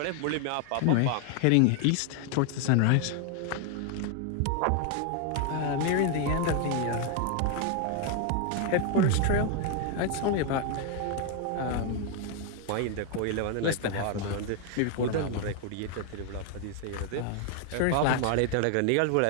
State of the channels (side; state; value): both; different; correlation 0.00